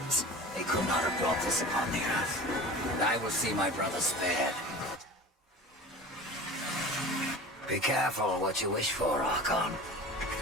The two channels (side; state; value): both; normal; correlation 0.37